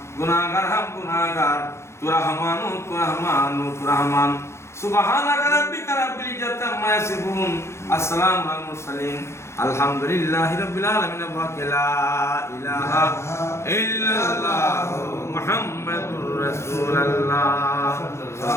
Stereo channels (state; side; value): late; right; 0.13 ms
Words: গুনাহগার তু রহমান সুবহানাকা রাব্বিকা রাব্বিল ইজ্জাতি আম্মা ইয়াসিফুন আসসালামু আলাল মুরসালিন আলহামদুলিল্লাহি রাব্বিল আলামিন ওয়া লা ইলাহা ইল্লাল্লাহু মুহাম্মাদুর রাসূলুল্লাহ।